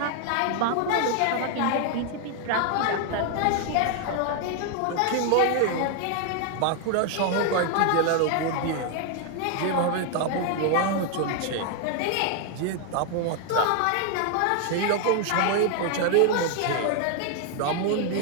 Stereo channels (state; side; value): different; both; correlation 0.00